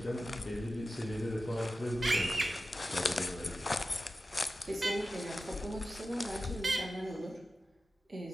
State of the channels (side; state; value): both; normal; correlation 0.93